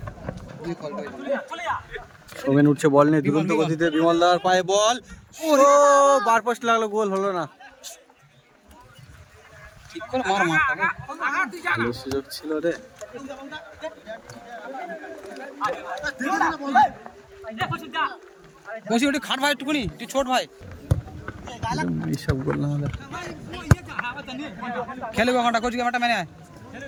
সোমেন উঠছে বল নিয়ে দুরন্ত গতিতে বিমলদার পায়ে বল ও বার পোস্ট লাগলো গোল হলো না ঠিক করে মার ভালো সুযোগ ছিল রে বসি ওটা খাট ভাই একটুকুনি তুই ছোট ভাই এইসব গোল না হলে খেলবে ঘন্টা কোচিং মাঠটা মেনে আয়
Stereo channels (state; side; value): identical; both; correlation 1.00